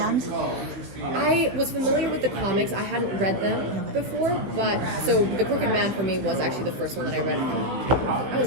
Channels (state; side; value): late; left; 15 ms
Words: I was familiar with the comics. I hadn't read them before, but so The Crooked Man for me was actually the first one that I read. I